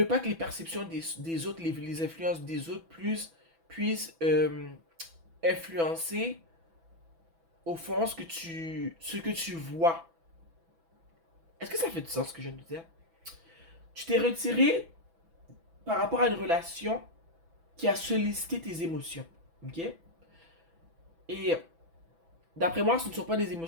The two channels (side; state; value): left; late; 6.0 ms